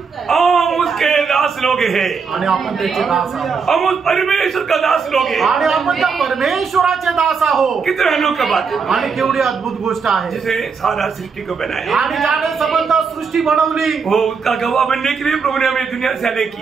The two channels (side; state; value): left; quieter; 5.5 dB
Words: हम उसके दास लोग हैं आणि आपण त्याचे दास आहोत हम उस परमेश्वर का दास लोग हैं आणि आपण त्या परमेश्वराचे दास आहोत. कितने अनोखी बात है आणि केवढी अद्भुत गोष्ट आहे. जिसे सारा सृष्टि को बनाया आणि ज्याने संबंध सृष्टी बनवली वो उसका गवाह बनने के लिए प्रभु ने हमें दुनिया से अलग